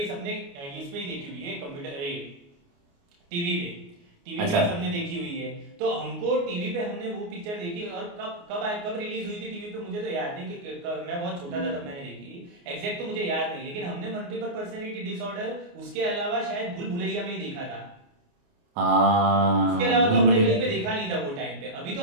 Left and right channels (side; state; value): left; late; 29 ms